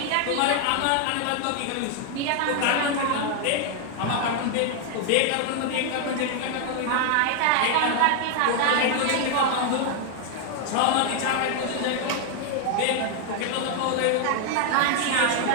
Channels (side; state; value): both; different; correlation 0.00